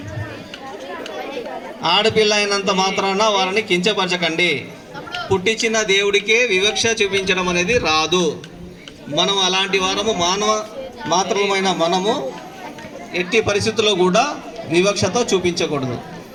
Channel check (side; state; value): both; identical; correlation 1.00